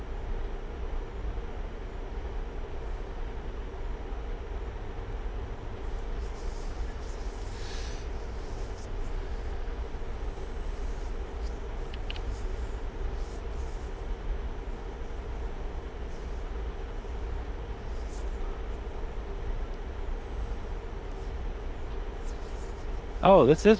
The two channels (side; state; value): both; identical; correlation 1.00